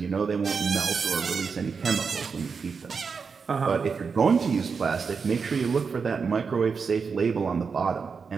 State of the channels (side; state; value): left; quieter; 5.5 dB